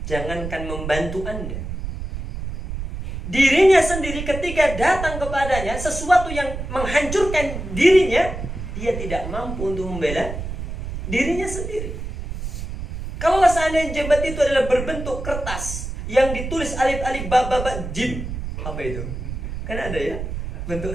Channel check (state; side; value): noise; right; rumble, 7 dB below the sound